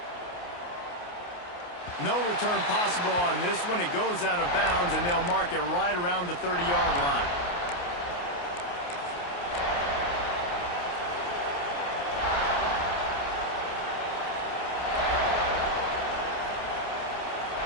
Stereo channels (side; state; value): right; late; 28 ms